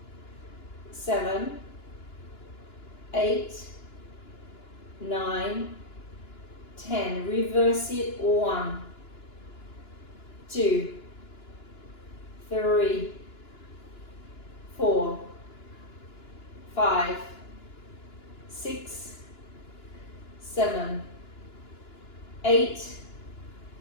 7, 8, 9, 10. Reverse it. 1, 2, 3, 4, 5, 6, 7, 8,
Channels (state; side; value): late; right; 2.9 ms